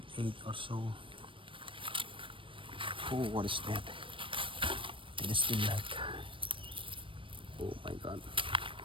or so. Oh, what is that? It is still like. Oh my God.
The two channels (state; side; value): late; left; 0.25 ms